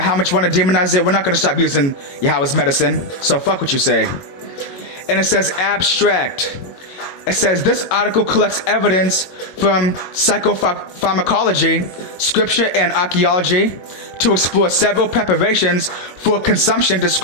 how much you want to demonize it, we're not going to stop using Yahweh's medicine. So fuck what you say. And it says abstract. It says this article collects evidence from psychopharmacology, scripture, and archaeology to explore several preparations for consumption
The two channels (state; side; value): late; right; 22 ms